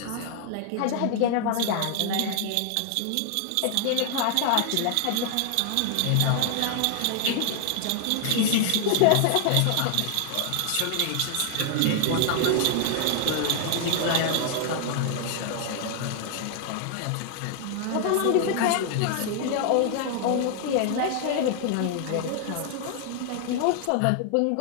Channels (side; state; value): both; different; correlation 0.00